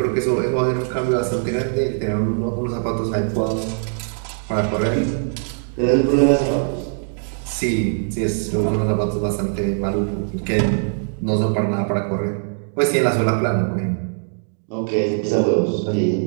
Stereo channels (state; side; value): silent; left; digital silence